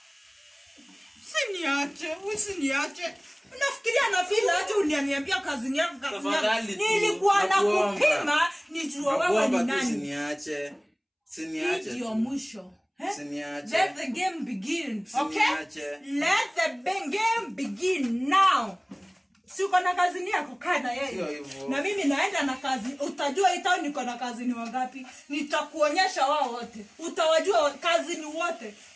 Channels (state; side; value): identical; both; correlation 1.00